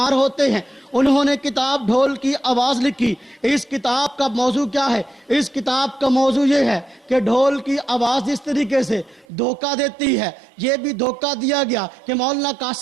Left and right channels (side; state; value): left; drops out; at 9.2 s